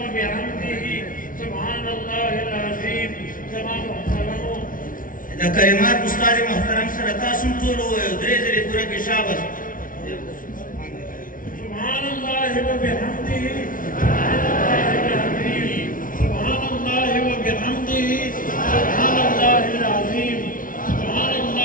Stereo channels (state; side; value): late; right; 0.39 ms